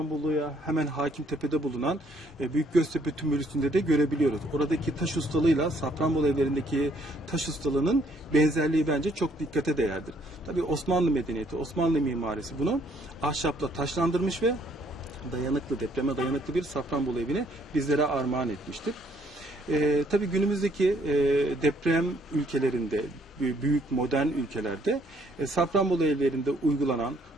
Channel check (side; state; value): both; normal; correlation 0.66